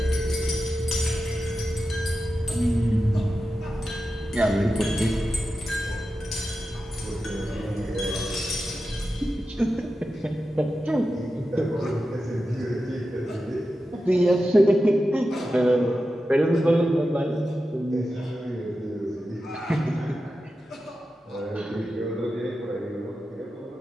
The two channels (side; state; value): both; normal; correlation 0.91